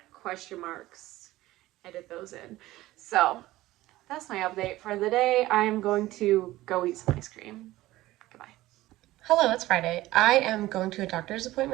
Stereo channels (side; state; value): left; quieter; 16.9 dB